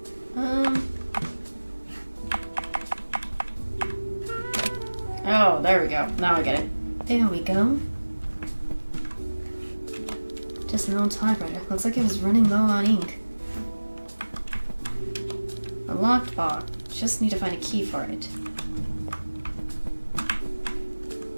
Oh, there we go. Now I get it. There we go. Just an old typewriter. Looks like it was running low on ink. A locked box. Just need to find a key for it.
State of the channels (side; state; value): both; inverted; correlation -1.00